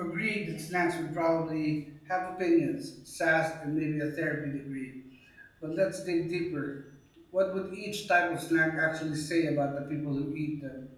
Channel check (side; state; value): both; identical; correlation 1.00